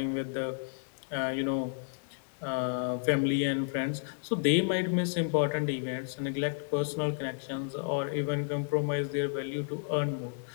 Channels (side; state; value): right; silent; digital silence